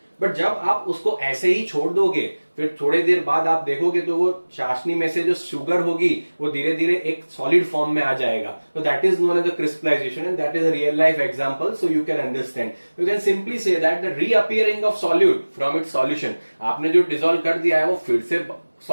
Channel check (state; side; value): inverted; both; correlation -1.00